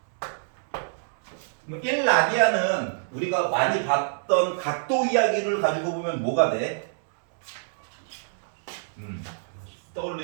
1라디안은 우리가 많이 봤던 각도 이야기를 가지고 보면 뭐가 돼?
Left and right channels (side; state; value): left; silent; digital silence